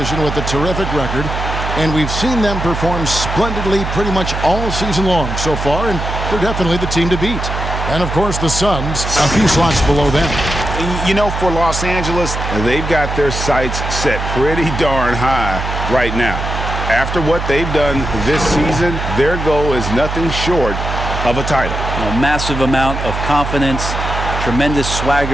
with a terrific record, and we've seen them perform splendidly pretty much all season long so far, and they're definitely the team to beat. And, of course, the Suns, a few slots below them. You know, for Los Angeles, they've got their sights set pretty darn high right now. After what they've done this season, their goal is nothing short of a title. A massive amount of confidence, tremendous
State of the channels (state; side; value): noise; right; hum, 4 dB below the sound